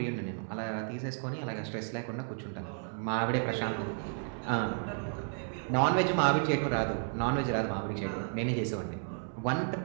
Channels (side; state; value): left; silent; 56 dB below the other